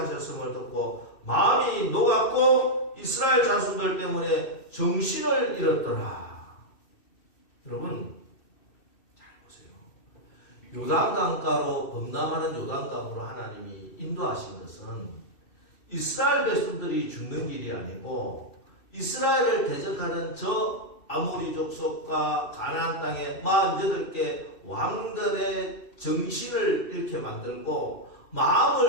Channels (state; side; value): late; right; 2.6 ms